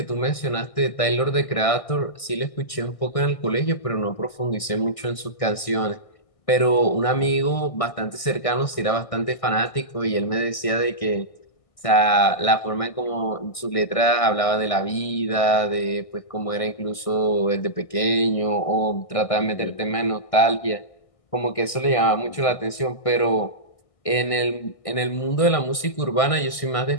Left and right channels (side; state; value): right; late; 1.6 ms